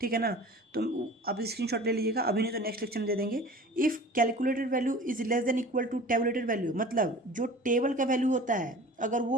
ठीक है ना। तो आप स्क्रीनशॉट ले लीजिएगा, अभी नहीं तो नेक्स्ट लेक्चर में दे देंगे। If calculated value is less than equal to tabulated value, मतलब जो टेबल का वैल्यू होता है अगर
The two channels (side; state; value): both; normal; correlation 0.41